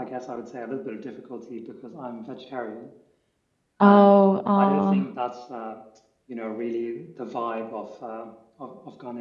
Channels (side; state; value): both; identical; correlation 1.00